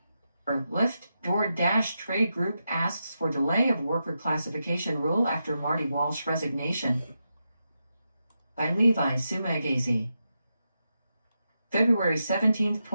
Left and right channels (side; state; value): both; inverted; correlation -0.87